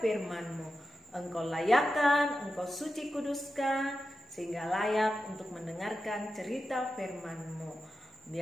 firman-Mu. Engkau layakkan, Engkau suci kuduskan, sehingga layak untuk mendengarkan cerita firman-Mu.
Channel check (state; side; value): normal; both; correlation 0.91